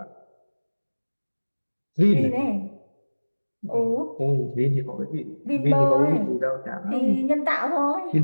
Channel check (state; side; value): inverted; both; correlation -1.00